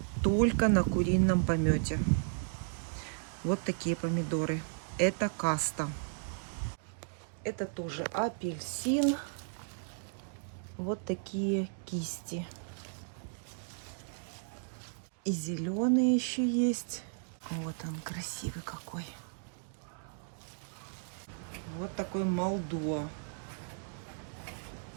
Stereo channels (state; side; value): silent; left; digital silence